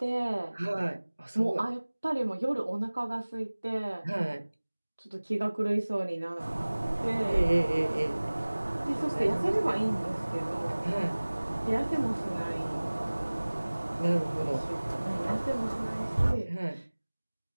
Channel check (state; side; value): inverted; both; correlation -1.00